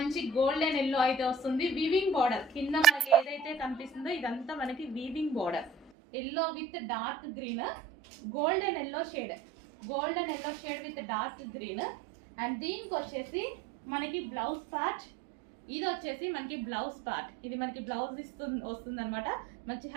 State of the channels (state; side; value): drops out; left; at 5.9 s